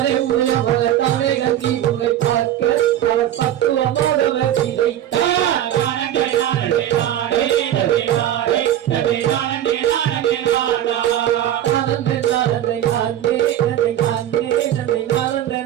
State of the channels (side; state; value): left; quieter; 11.7 dB